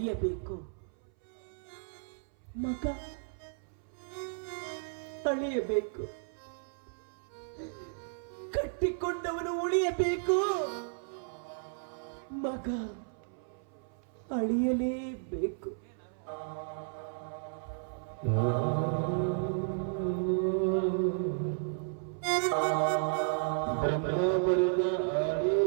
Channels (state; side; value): silent; left; 55 dB below the other